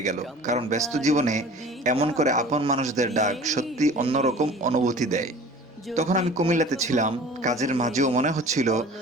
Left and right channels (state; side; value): normal; both; correlation 0.43